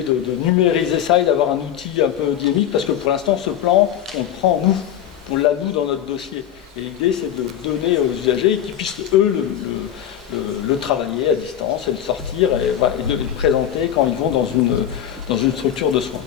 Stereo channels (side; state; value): right; quieter; 10.2 dB